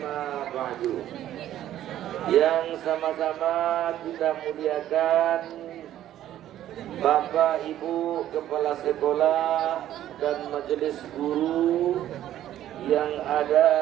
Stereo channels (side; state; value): left; quieter; 12.3 dB